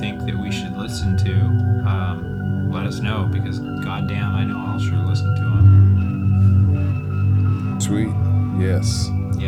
think that we should listen to, let us know, because goddamn, I know I'll sure listen to them. Sweet. Yes.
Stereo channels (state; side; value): identical; both; correlation 1.00